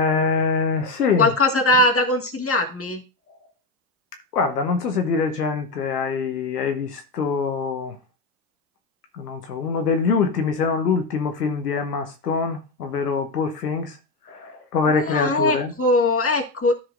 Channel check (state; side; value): quieter; right; 3.3 dB